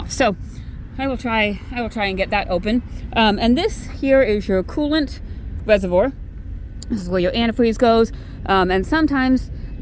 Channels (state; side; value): identical; both; correlation 1.00